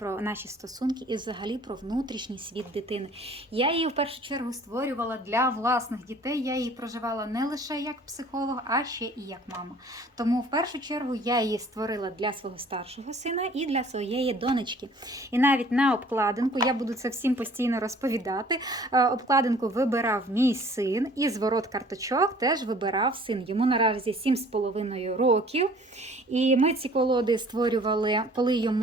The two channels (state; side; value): normal; both; correlation 0.52